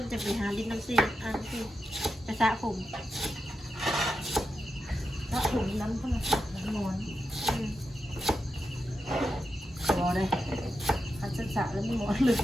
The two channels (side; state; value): both; normal; correlation 0.88